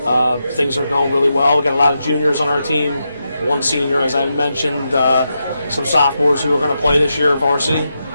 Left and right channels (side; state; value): both; inverted; correlation -0.86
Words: Things are going really well. We got a lot of juniors on our team, one senior, as I mentioned, some sophomores who are going to play this year varsity.